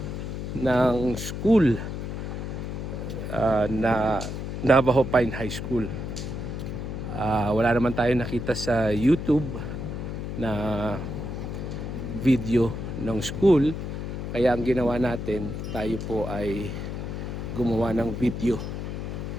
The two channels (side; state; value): left; noise; hum, 5 dB below the sound